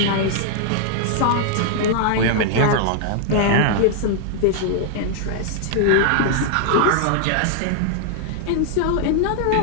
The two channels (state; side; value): different; both; correlation 0.00